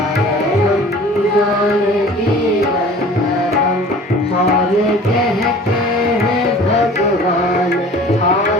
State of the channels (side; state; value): both; normal; correlation 0.45